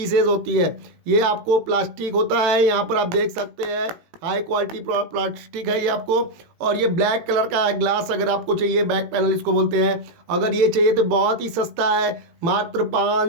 होती है, ये आपको प्लास्टिक होता है। यहाँ पर आप देख सकते हैं हाई क्वालिटी प्लास्टिक है ये आपको। और ये ब्लैक कलर का है ग्लास, अगर आपको चाहिए बैक पैनल इसको बोलते हैं। अगर ये चाहिए तो बहुत ही सस्ता है, मात्र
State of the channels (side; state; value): left; late; 18 ms